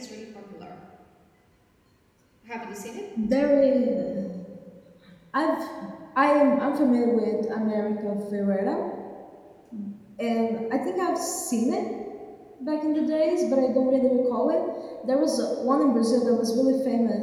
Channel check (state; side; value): identical; both; correlation 1.00